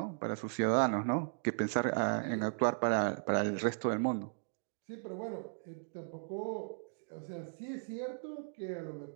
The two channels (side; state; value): left; silent; digital silence